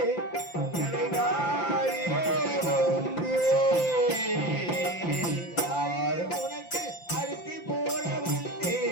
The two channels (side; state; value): right; late; 5.8 ms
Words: உனக்கு அரிசி போட